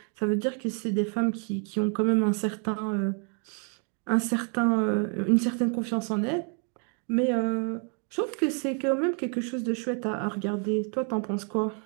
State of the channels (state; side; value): quieter; left; 39.8 dB